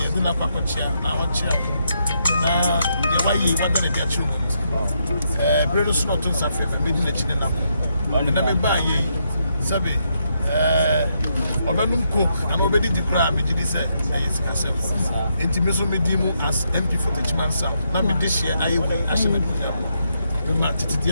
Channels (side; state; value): both; inverted; correlation -0.79